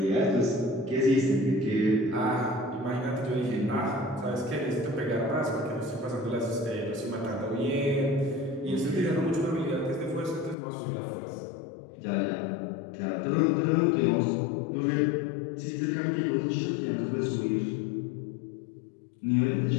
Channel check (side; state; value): right; drops out; at 10.6 s